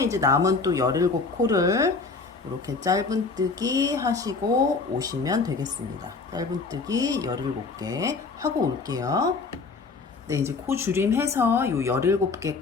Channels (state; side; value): quieter; right; 4.3 dB